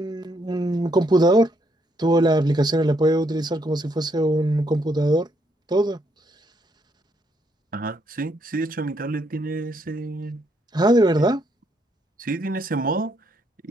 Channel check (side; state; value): both; normal; correlation 0.74